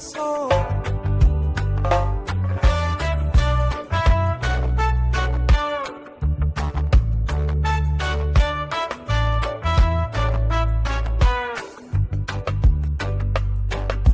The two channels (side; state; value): both; identical; correlation 1.00